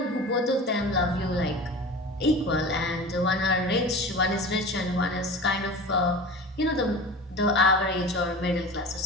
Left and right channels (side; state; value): both; normal; correlation 0.34